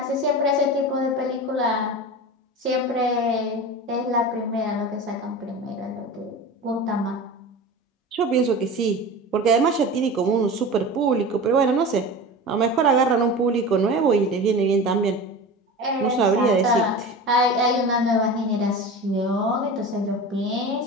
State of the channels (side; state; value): both; normal; correlation 0.31